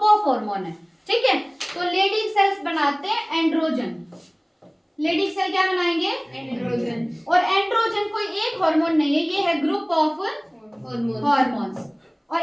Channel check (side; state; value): both; identical; correlation 1.00